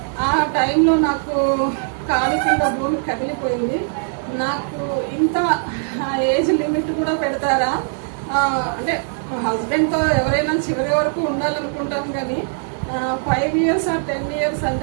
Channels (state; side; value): silent; left; digital silence